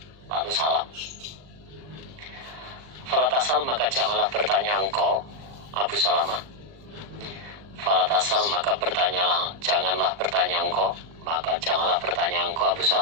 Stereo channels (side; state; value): left; late; 39 ms